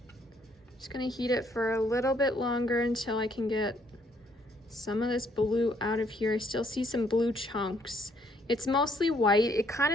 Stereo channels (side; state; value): both; normal; correlation 0.67